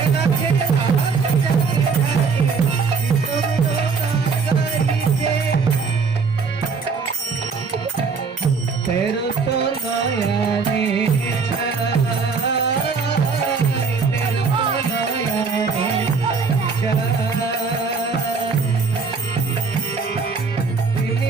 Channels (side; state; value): left; quieter; 5.0 dB